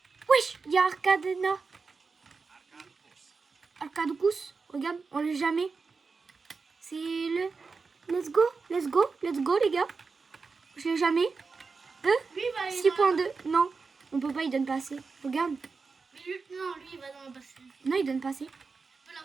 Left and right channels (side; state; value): left; quieter; 4.6 dB